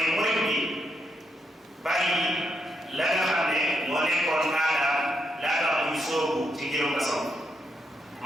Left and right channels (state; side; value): normal; both; correlation 0.79